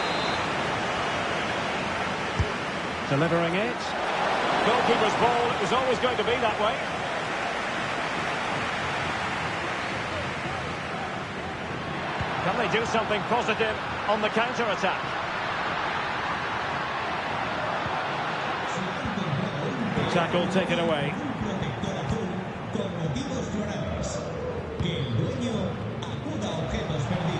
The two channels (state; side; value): identical; both; correlation 1.00